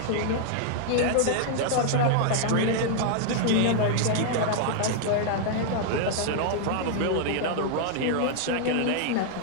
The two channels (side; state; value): both; different; correlation 0.00